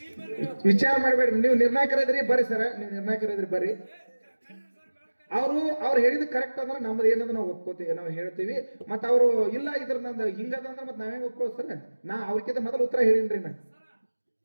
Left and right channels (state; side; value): inverted; both; correlation -1.00